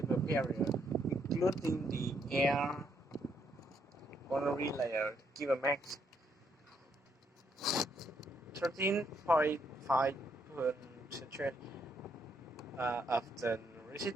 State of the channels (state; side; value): normal; both; correlation 0.74